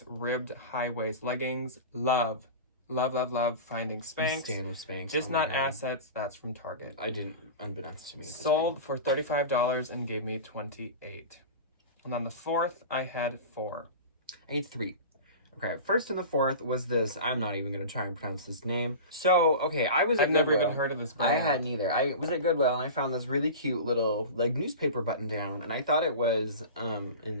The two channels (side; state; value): both; inverted; correlation -0.31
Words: ribbed high-waist leggings. Love finding Spanx. Stand with Spanx. Just not assets. That's from Target. I didn't, unbeknownst to me. Sold for $35 and gave me $28. And on the fourth, I had four. I had three. Okay, first and the fourth was this. I'm not even going to try and pronounce this name. So, okay, I was at I've never Goodwill. even heard of this brand. I hadn't either. I was at Goodwill and I found this really cute little, like, newspaper button down. And I thought it was,